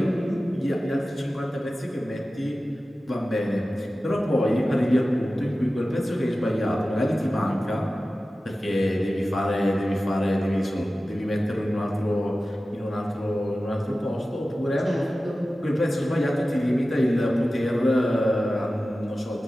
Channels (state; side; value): normal; both; correlation 0.95